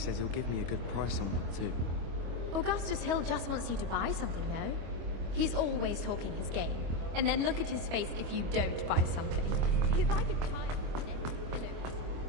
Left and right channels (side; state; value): left; late; 25 ms